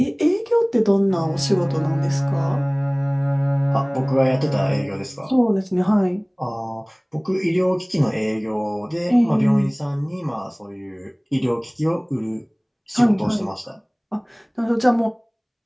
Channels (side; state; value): both; identical; correlation 1.00